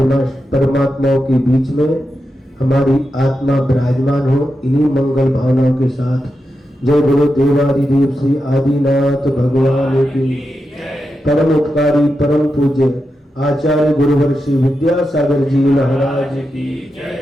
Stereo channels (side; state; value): both; normal; correlation 0.88